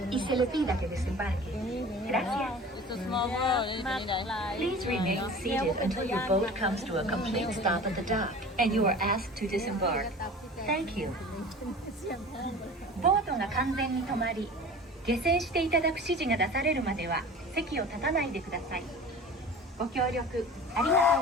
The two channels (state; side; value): normal; both; correlation 0.39